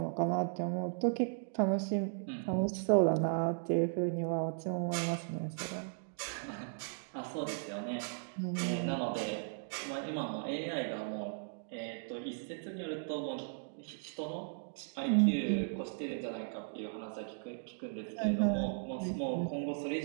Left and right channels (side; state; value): left; silent; digital silence